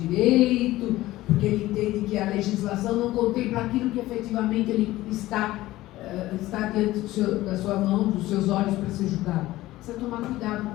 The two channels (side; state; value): right; quieter; 16.7 dB